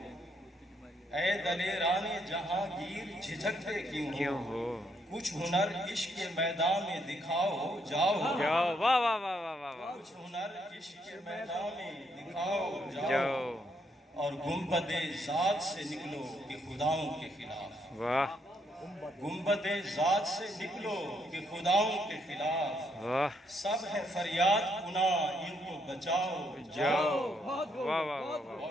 اے دلیران جہانگیر جھجکتے کیوں کیوں ہو، ہو، کچھ ہنر عشق کے میدان میں دکھاؤ، جاؤ جاؤ، واہ واہ واہ واہ واہ واہ، کچھ ہنر عشق کے میدان میں دکھاؤ، جاؤ جاؤ، اور گنبد ذات سے نکلو کہ خداؤں کے خلاف، واہ، گنبد ذات سے نکلو کہ خداؤں کے خلاف، واہ، سب ہے فریاد کنا ان کو بچاؤ، جاؤ، بہت خوب، واہ واہ واہ بہت واہ،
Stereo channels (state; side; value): normal; both; correlation 0.74